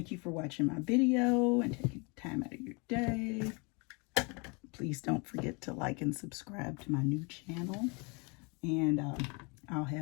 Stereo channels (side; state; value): right; quieter; 31.1 dB